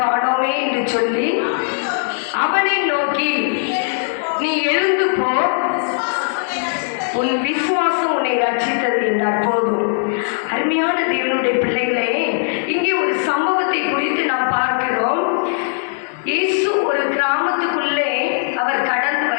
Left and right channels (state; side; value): silent; right; digital silence